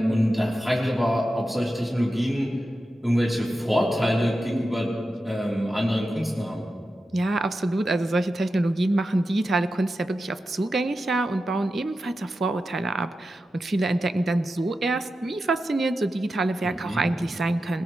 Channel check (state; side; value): normal; both; correlation 0.91